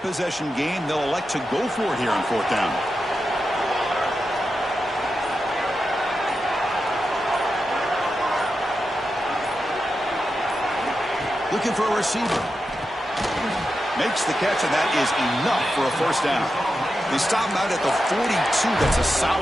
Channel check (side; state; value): both; normal; correlation 0.89